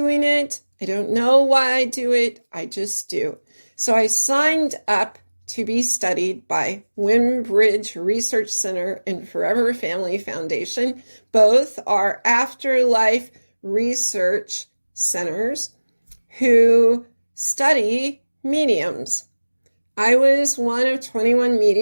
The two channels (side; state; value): both; inverted; correlation -1.00